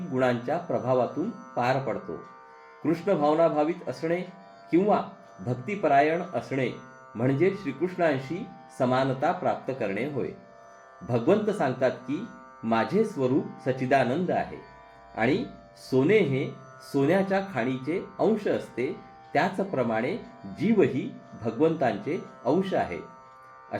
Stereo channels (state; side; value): identical; both; correlation 1.00